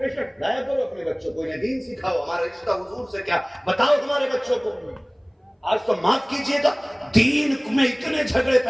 लाया करो अपने बच्चों को, इन्हें दीन सिखाओ। हमारा रिश्ता हुजूर से क्या बताओ हमारे बच्चों को। आज तो माफ कीजिएगा, दीन में इतने झगड़े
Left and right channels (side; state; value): both; identical; correlation 1.00